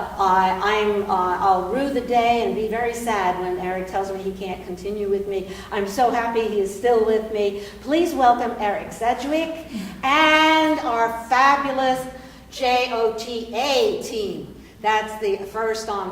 I'll rue the day and be very sad when Eric tells me he can't continue with me. I'm so happy he is still with me. Please welcome Eric Sedgwick and our fabulous JOTA team That's the first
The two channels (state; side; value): identical; both; correlation 1.00